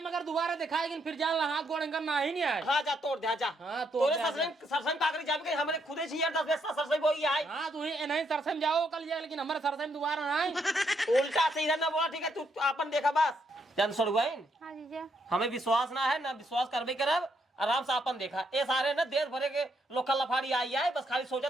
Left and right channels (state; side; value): normal; both; correlation 0.75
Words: में अगर दोबारा दिखाएगी फिर जान ला हाथ गोड़ इनका ना ही नहीं आए हाँ जा तोड़ दे जा हाँ, तोड़ तोरे दे, सरसई कागरी जाम के हमरे खुदे छी यार 10 बेस्ता सरसई बोई आई हाँ तू ही नहीं सरसई में जाओ कल जाए लेकिन हमारे सरसई में दोबारा ना आए उल्टा सीधा ना बोला ठीक है तू अपन देखा बस जान सड़ुआइन हाँ जीजा हमें विश्वास ना है ना विश्वास करबे करब आराम से अपन देखा ये सारे ना देश भरे के लोकल लफाड़ी आई है बस खाली